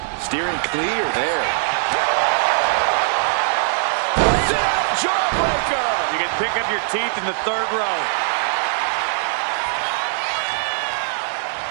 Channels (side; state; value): left; silent; 65 dB below the other